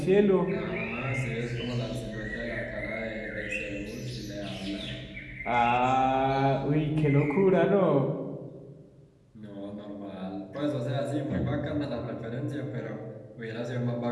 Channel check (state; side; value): identical; both; correlation 1.00